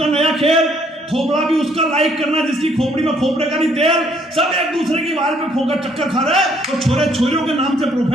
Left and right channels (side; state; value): both; normal; correlation 0.66